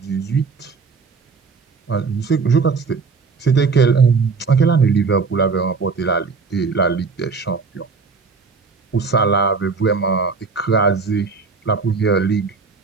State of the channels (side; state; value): left; quieter; 4.8 dB